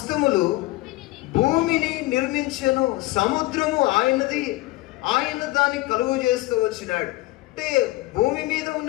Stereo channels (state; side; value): quieter; right; 19.4 dB